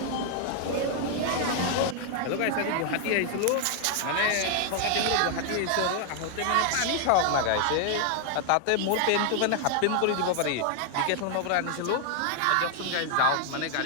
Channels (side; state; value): both; different; correlation 0.00